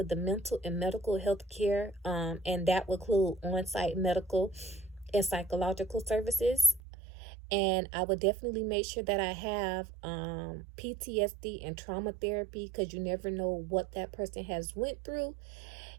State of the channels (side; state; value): left; drops out; at 6.8 s